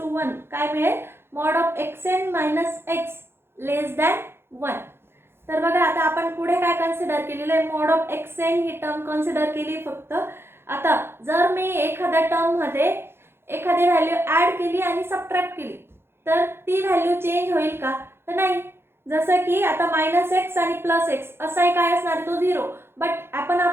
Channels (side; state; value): left; late; 0.11 ms